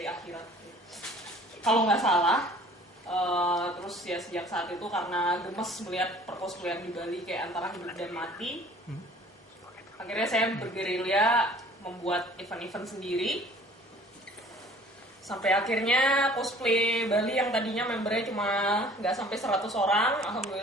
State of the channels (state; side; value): normal; both; correlation 0.51